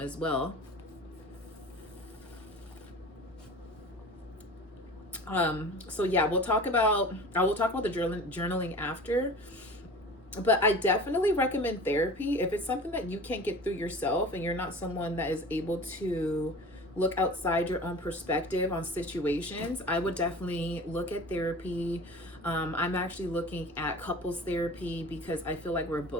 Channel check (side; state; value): both; normal; correlation 0.39